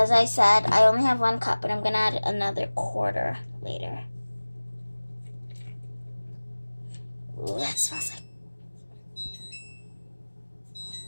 I said, I only have 1 cup, but I'm going to add another quarter later. Ooh, that smells like...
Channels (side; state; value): both; inverted; correlation -1.00